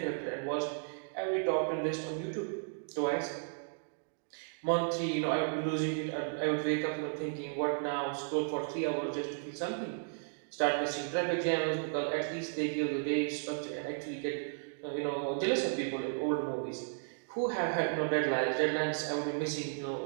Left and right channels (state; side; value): silent; left; digital silence